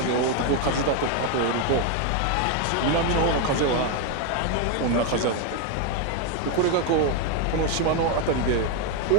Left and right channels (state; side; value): different; both; correlation 0.01